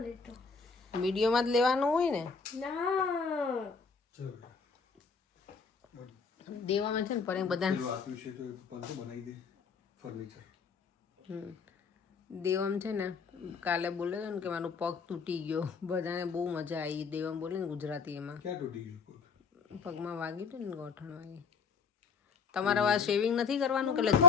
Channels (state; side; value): quieter; right; 5.3 dB